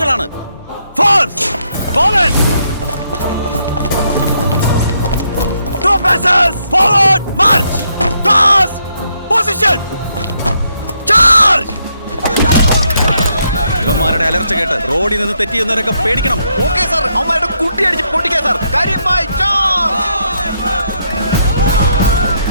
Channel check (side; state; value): both; inverted; correlation -0.76